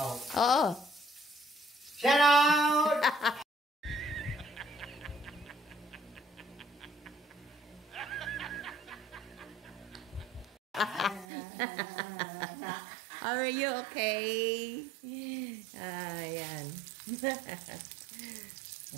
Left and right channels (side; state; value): left; drops out; at 11.2 s